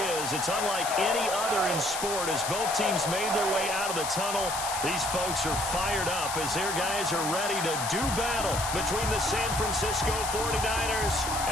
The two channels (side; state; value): left; noise; hiss, 5 dB below the sound